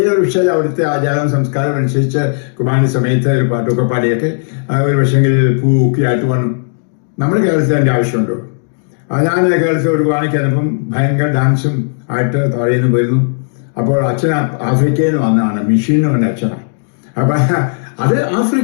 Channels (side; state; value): right; silent; digital silence